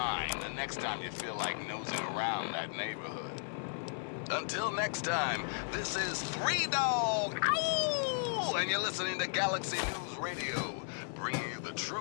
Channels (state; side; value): silent; right; 54 dB below the other